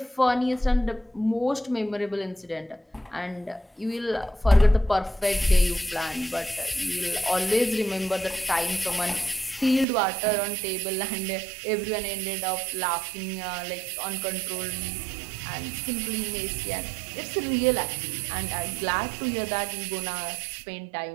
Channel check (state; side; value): drops out; left; at 9.9 s